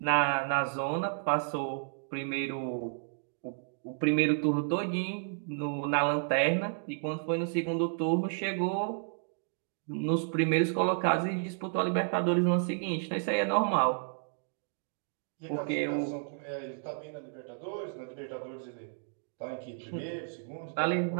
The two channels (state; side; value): silent; left; digital silence